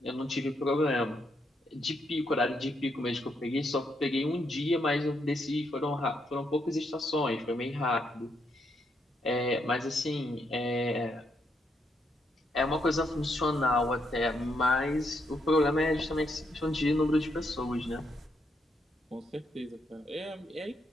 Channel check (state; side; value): normal; both; correlation 0.78